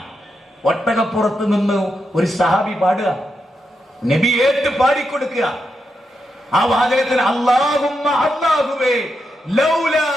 ഒട്ടകപ്പുറത്ത് നിന്ന് ഒരു സഹാബി പാടുക, നബി ഏറ്റ് പാടിക്കൊടുക്കുക. ആ വാചകത്തിന് അല്ലാഹുമ്മ അല്ലാഹുവേ ലൗലാ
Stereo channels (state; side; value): normal; both; correlation 0.85